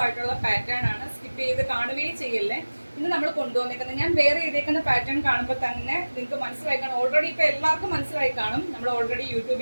ആയിട്ടുള്ള പാറ്റേൺ ആണ്. സ്കിപ്പ് ചെയ്ത് കാണുകയും ചെയ്യല്ലേ. ഇന്ന് നമ്മൾ കൊണ്ടുവന്നേക്കുന്നത് ഞാൻ വേറെ ചെയ്തേക്കുന്ന പാറ്റേൺ കാണുമ്പോൾ തന്നെ നിങ്ങൾക്ക് മനസ്സിലായി കാണും. ഓൾറെഡി ഇപ്പൊ എല്ലാവർക്കും മനസ്സിലായി കാണും. നമ്മൾ ഓൾറെഡി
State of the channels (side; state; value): both; inverted; correlation -1.00